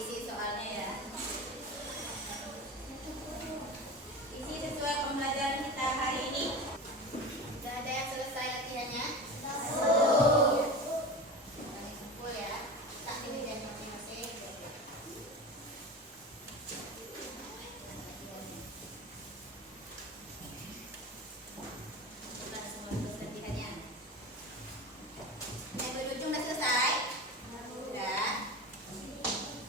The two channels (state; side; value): normal; both; correlation 0.28